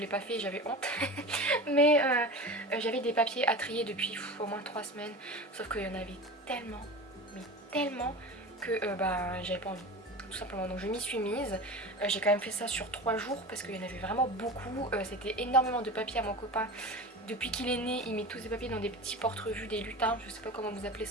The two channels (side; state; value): both; normal; correlation 0.31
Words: pas fait et j'avais honte. Mais j'avais des papiers à trier depuis au moins 3 semaines. Sauf qu'il y en avait tellement, mais tellement que j'avais pas envie. Tout simplement, donc je m'y suis mise. J'ai quand même fait ça sur 3 jours parce qu'il y en avait vraiment beaucoup. C'était énormément de papiers à mon copain. Depuis qu'il est né, il met tous ses papiers dans des petits porte-revues, des lutins. Je sais pas comment vous appelez